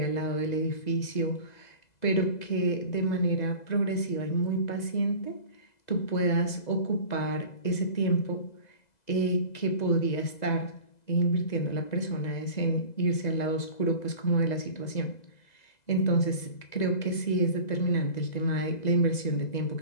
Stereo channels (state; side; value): late; right; 2.0 ms